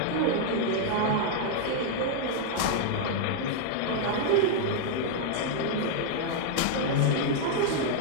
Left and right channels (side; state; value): both; different; correlation 0.00